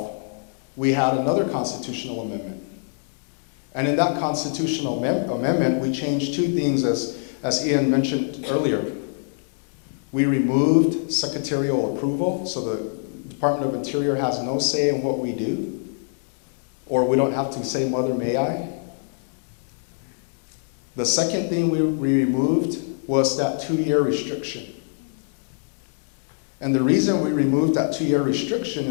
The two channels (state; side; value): silent; right; 62 dB below the other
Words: we had another constitutional amendment. And in that constitutional amendment, we changed 2 things, as Ian mentioned earlier. We removed secretarial approval, so the Department of Interior has no say in what we do, or we don't have to say, "Mother, may I?" The second thing we removed was that 2-year restriction. And the reason we removed that 2-year restriction